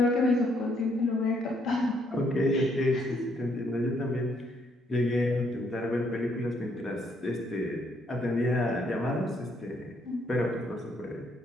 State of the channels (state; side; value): normal; both; correlation 0.71